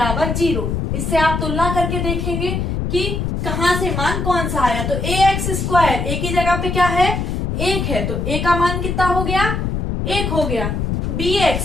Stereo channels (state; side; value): noise; left; rumble, 1 dB below the sound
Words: 0। इससे आप तुलना करके देखेंगे कि कहाँ से मान कौन सा आया। तो ए एक्स स्क्वायर, ए की जगह पे क्या है? 1 है, तो ए का मान कितना हो गया? 1 हो गया। बी